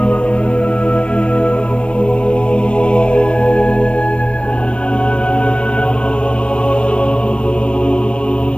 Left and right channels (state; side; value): late; right; 0.059 ms